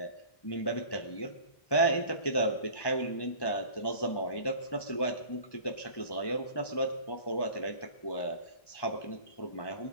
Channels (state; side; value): late; right; 1.1 ms